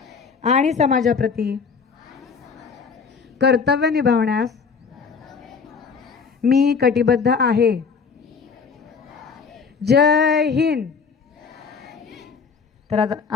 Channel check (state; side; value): quieter; right; 5.6 dB